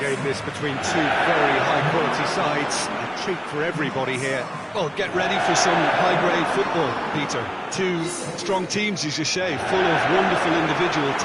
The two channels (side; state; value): both; identical; correlation 1.00